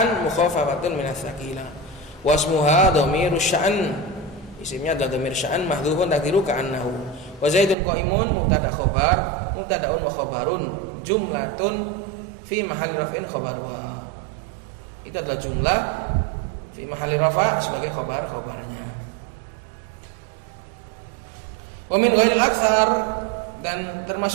mukhaffafatun minas tsaqila, wasmuha dhamirus sya'an, isimnya adalah dhamir sya'an mahdhufun taqdiru ka'annahu. Wa zaidun qaimun mubtada khabar, mubtadaun wa khabarun, jumlatun fi mahalli raf'in khabaruha, itu adalah jumlah fi mahalli rafa sebagai khabarnya. Wa min ghairil aktsar, dan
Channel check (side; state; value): left; drops out; at 7.8 s